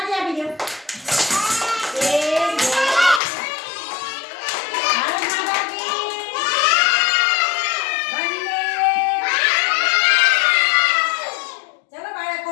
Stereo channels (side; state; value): right; drops out; at 3.2 s